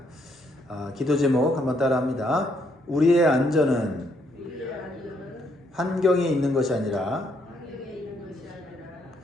기도 제목 한번 따라합니다. 우리의 안전은 환경에 있는 것이 아니라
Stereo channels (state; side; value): normal; both; correlation 0.72